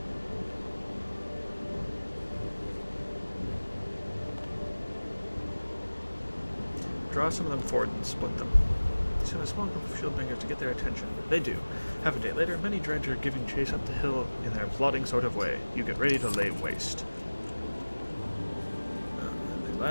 Draw some of them forward and split them. Send a small group of shieldbangers to get their attention. They do. Half a day later, many dredge are giving chase up the hill in their plodding sort of way. You get ready to lay waste. They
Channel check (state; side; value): inverted; both; correlation -1.00